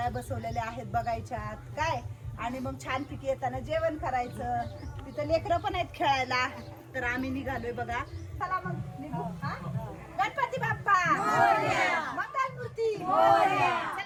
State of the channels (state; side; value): identical; both; correlation 1.00